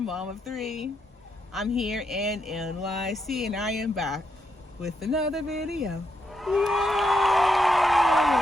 of three. I'm here in NYC and I am back with another video.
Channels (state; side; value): normal; both; correlation 0.81